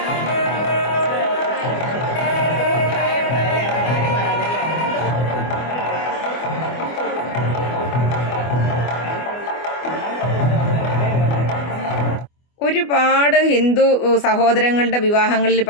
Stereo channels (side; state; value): right; late; 24 ms